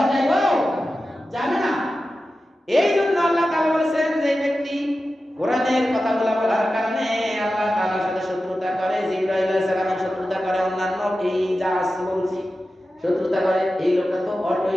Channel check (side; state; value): both; normal; correlation 0.93